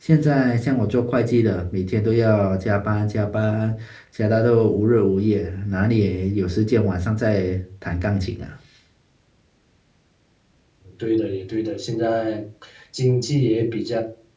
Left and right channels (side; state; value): both; identical; correlation 1.00